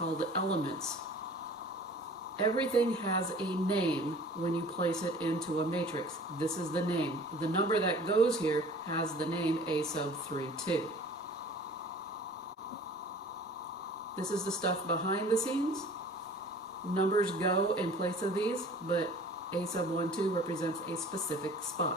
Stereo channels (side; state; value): both; normal; correlation 0.47